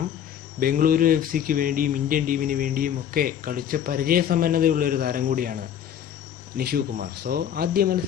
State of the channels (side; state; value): right; quieter; 9.5 dB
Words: ബംഗളൂരു FC വേണ്ടിയും ഇന്ത്യൻ ടീമിന് വേണ്ടിയും ഒക്കെ കളിച്ച പരിചയസമ്പന്നതയുള്ളൊരു താരം കൂടിയാണ് നിഷു കുമാർ. സോ ആദ്യ